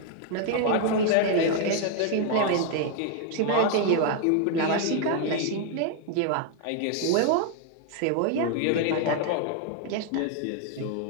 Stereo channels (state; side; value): different; both; correlation 0.00